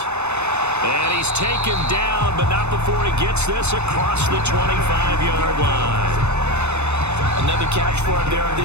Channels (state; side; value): late; left; 0.81 ms